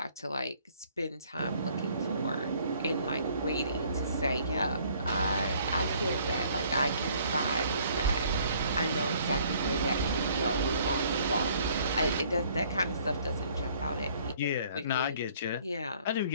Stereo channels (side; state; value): both; inverted; correlation -0.59